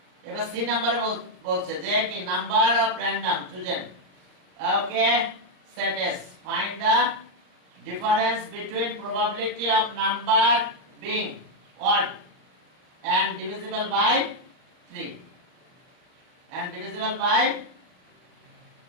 এবার সি নাম্বারে বলছে যে কি number of random chosen okay set S find the difference between probability of number being odd and divisible by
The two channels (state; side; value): late; left; 39 ms